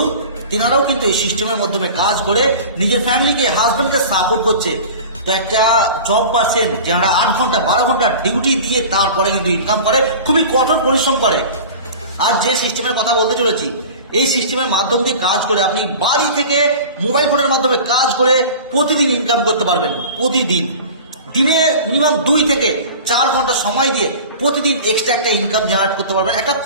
তেনারাও কিন্তু এই সিস্টেমের মাধ্যমে কাজ করে নিজের ফ্যামিলিকে, হাজবেন্ডকে সাপোর্ট করছে। তো একটা জব পাচ্ছেন যারা 8 ঘন্টা 12 ঘন্টা ডিউটি দিয়ে তারপরে কিন্তু ইনকাম করে, খুবই কঠোর পরিশ্রম করে। আর যে সিস্টেমের কথা বলতে চলেছি, এই সিস্টেমের মাধ্যম দিয়ে কাজ করে আপনি বাড়ি থেকে মোবাইল ফোনের মাধ্যমে কাজ করে প্রতিদিন ইনকাম করতে পারবেন। প্রতিদিন দিনে মিনিমাম 2 থেকে 4 ঘন্টা সময় দিয়ে প্রতিদিন এক্সট্রা একটা ইনকাম জেনারেট করতে পারবেন, একটা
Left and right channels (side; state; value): both; inverted; correlation -0.38